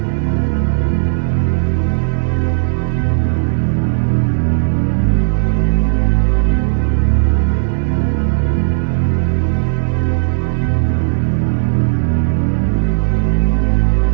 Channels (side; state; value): left; silent; digital silence